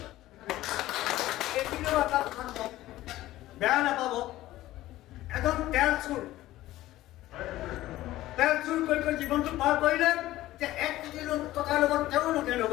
এইখিনিও এটা কথা বেয়া নাপাব, এজন তেল চুৰ কৰি জীৱনটো পাৰ কৰিলে, যে 1 কোটি টকাৰ লগত তেওঁ নগেন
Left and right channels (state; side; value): quieter; right; 15.7 dB